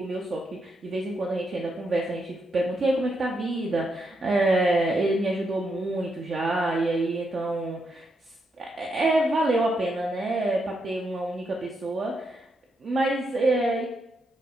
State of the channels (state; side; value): normal; both; correlation 0.81